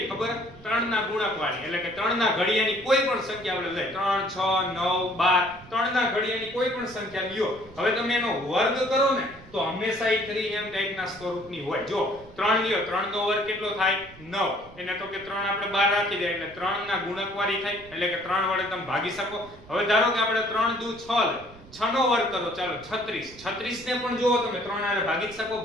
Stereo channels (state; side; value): noise; right; rumble, 21 dB below the sound